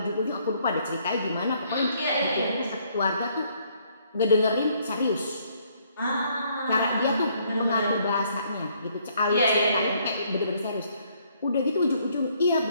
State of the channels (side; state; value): both; inverted; correlation -0.67